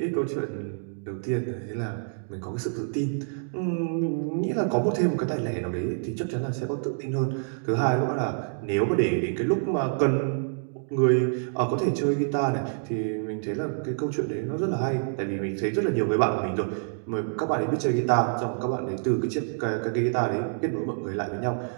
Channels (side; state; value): left; silent; digital silence